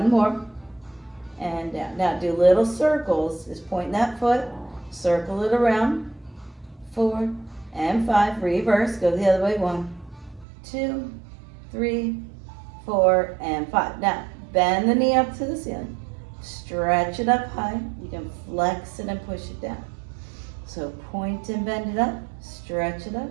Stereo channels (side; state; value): left; drops out; at 10.5 s